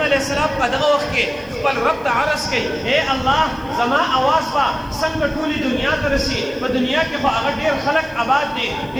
علیه السلام په دغه وخت کې خپل رب ته عرض کوي اے الله زما اواز به څنګه ټولې دنیا ته رسي؟ په دنیا کې خو هغه ډېر خلک آباد دي،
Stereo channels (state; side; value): noise; right; hiss, 29 dB below the sound